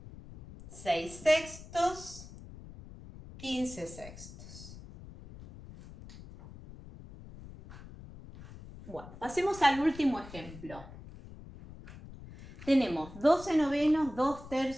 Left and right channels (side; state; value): left; noise; rumble, 16 dB below the sound